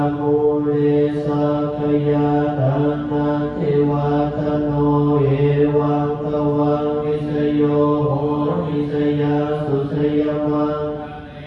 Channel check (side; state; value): both; identical; correlation 1.00